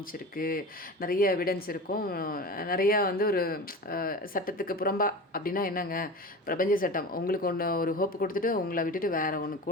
நிறைய எவிடன்ஸ் இருக்கும். நிறையா வந்து ஒரு சட்டத்துக்கு புறம்பா அப்படின்னா என்னங்க, பிரபஞ்ச சட்டம் உங்களுக்கு ஒன்று ஒரு ஹோப்பு கொடுத்துட்டு உங்களை விட்டுட்டு வேறு ஒன்று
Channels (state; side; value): normal; both; correlation 0.31